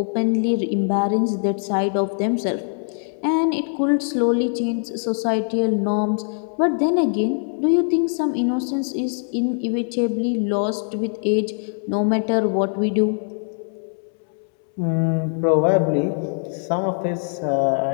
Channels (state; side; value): silent; right; 64 dB below the other